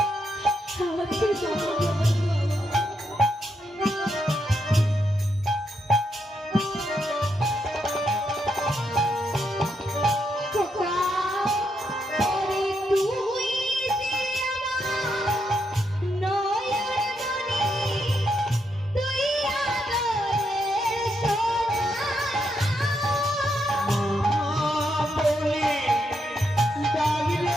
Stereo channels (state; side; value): normal; both; correlation 0.80